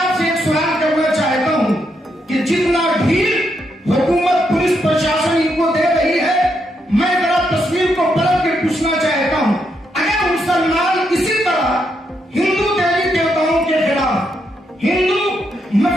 एक सवाल करना चाहता हूं कि जितना ढील हुकूमत, पुलिस प्रशासन इनको दे रही है, मैं जरा तस्वीर को पलट के पूछना चाहता हूं, अगर मुसलमान इसी तरह हिंदू देवी देवताओं के खिलाफ, हिंदू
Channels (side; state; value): both; normal; correlation 0.79